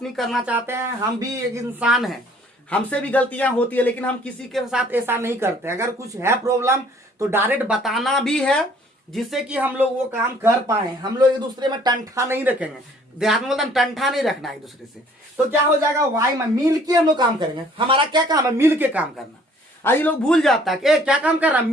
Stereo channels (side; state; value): both; normal; correlation 0.57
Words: नहीं करना चाहते हैं। हम भी एक इंसान हैं, हमसे भी गलतियां होती है, लेकिन हम किसी के साथ ऐसा नहीं करते। अगर कुछ है प्रॉब्लम तो डायरेक्ट बताना भी है, जिससे कि हम लोग वो काम कर पाए। हम लोग एक दूसरे में टंठा नहीं रखेंगे। देहात में बोलते हैं टंठा नहीं रखना एक दूसरे से। तो क्या हो जाएगा, वाई में मिल के हम लोग काम करेंगे। हमारा क्या काम है? मिल के काम करना। आज ये लोग भूल जाता है कि क्या काम कर रहा है,